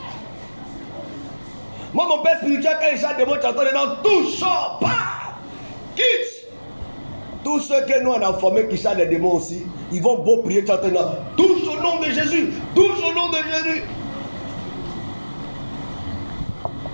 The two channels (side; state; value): both; inverted; correlation -1.00